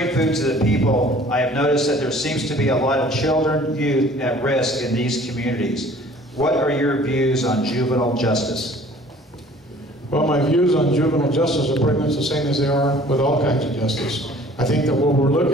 food to the people, I have noticed that there seems to be a lot of children, youth at risk in these communities. What are your views on juvenile justice? Well, my views on juvenile justice are pretty much the same as they are with all kinds of justice. I think that what we're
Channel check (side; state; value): both; normal; correlation 0.51